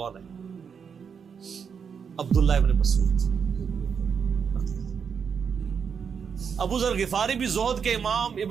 ہے؟ عبداللہ ابن مسعود۔ ابو ذر غفاری بھی زہد کے امام،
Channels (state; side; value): quieter; left; 6.6 dB